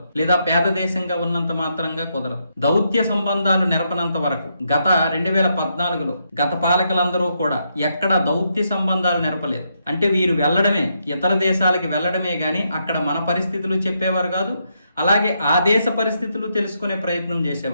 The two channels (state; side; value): inverted; both; correlation -0.79